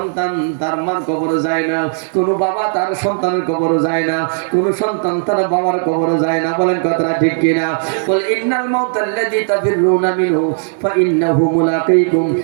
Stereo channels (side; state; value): left; silent; digital silence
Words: তার মার কবরে যায় না, কোনো বাবা তার সন্তানের কবরে যায় না, কোনো সন্তান তার বাবার কবরে যায় না। বলেন কথাটা ঠিক কিনা? বল ইন্নাল মাউতাল্লাযী তাফিরুনা মিনহু ফাইন্নাহু মুলাকীকুম